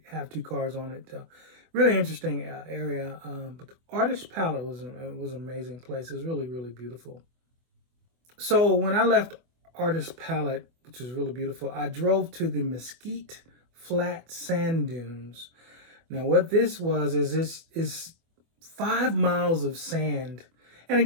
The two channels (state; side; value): late; left; 24 ms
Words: have two cars on it. Really interesting area. But the Artist Palette was an amazing place. It was really, really beautiful. So when I left Artist Palette, which was really beautiful, I drove to the Mesquite Flat Sand Dunes. Now, what this was is this is 5 miles of sand. And